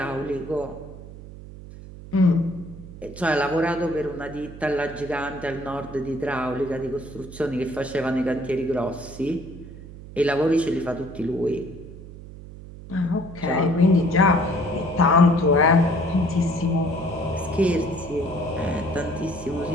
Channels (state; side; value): noise; right; hum, 15 dB below the sound